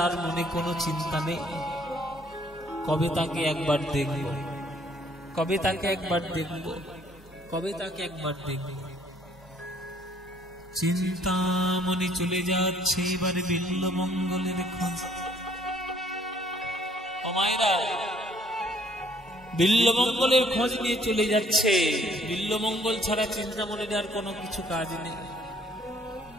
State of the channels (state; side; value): normal; both; correlation 0.62